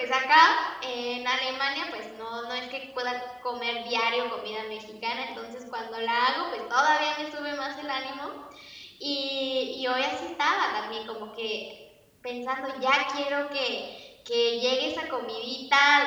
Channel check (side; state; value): both; identical; correlation 1.00